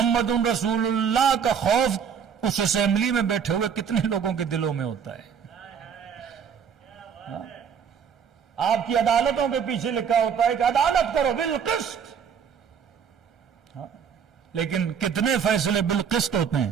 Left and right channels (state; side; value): quieter; left; 7.2 dB